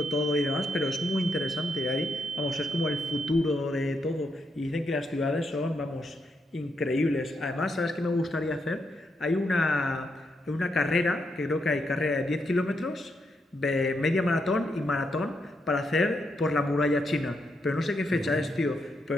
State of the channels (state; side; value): normal; both; correlation 0.80